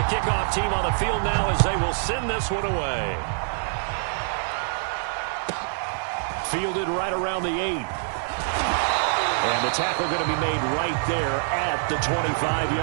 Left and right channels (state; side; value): silent; left; 56 dB below the other